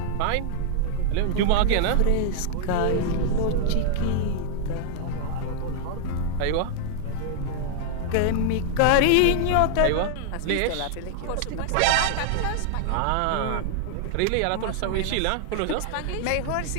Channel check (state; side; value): different; both; correlation -0.01